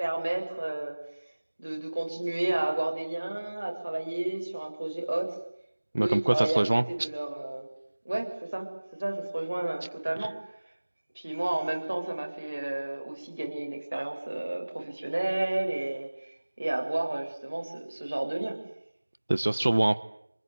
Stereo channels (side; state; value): both; inverted; correlation -1.00